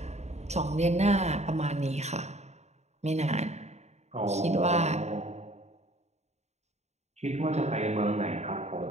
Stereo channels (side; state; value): left; late; 0.32 ms